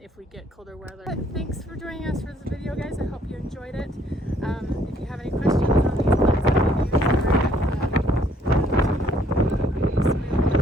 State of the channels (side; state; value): both; normal; correlation 0.65